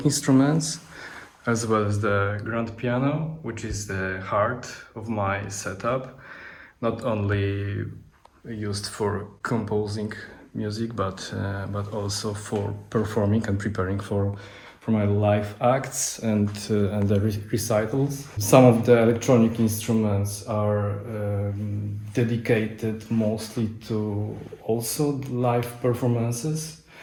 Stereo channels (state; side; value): identical; both; correlation 1.00